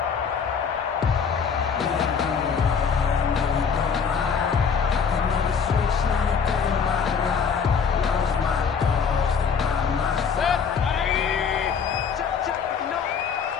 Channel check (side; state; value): right; quieter; 6.3 dB